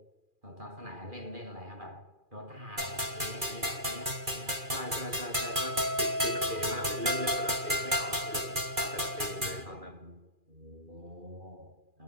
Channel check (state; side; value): late; left; 2.4 ms